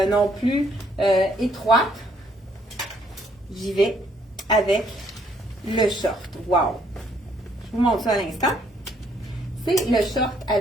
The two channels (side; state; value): both; normal; correlation 0.67